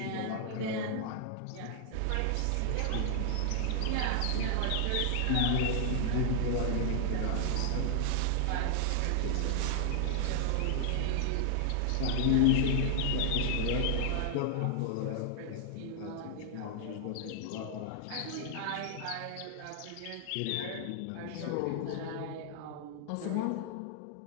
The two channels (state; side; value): different; both; correlation -0.01